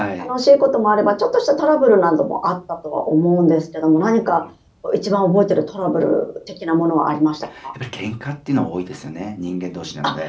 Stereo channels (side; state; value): both; identical; correlation 1.00